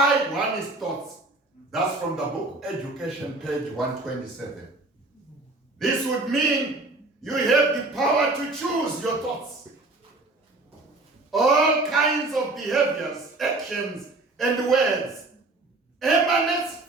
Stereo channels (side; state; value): left; quieter; 3.0 dB